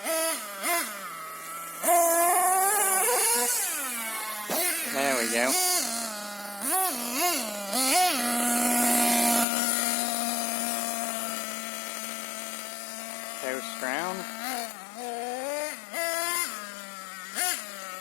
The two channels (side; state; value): right; drops out; at 9.5 s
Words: There we go. Coast round.